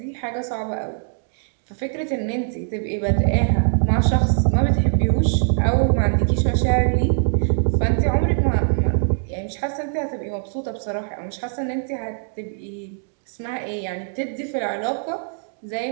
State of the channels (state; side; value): silent; left; digital silence